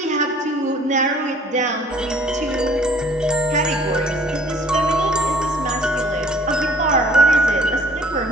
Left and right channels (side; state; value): both; normal; correlation 0.54